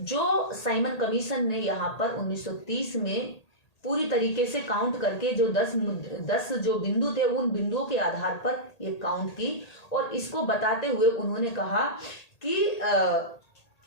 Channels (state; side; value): late; right; 1.8 ms